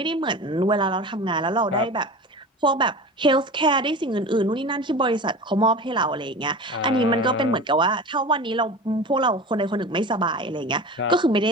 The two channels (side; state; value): both; normal; correlation 0.33